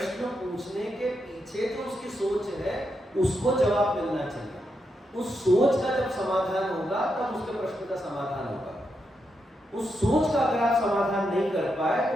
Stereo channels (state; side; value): normal; both; correlation 0.84